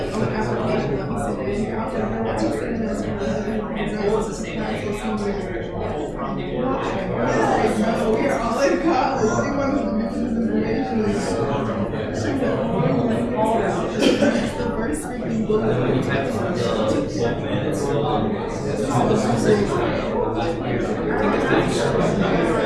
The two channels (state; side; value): identical; both; correlation 1.00